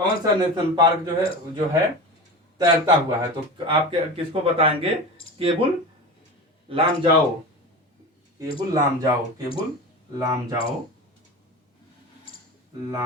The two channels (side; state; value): both; normal; correlation 0.29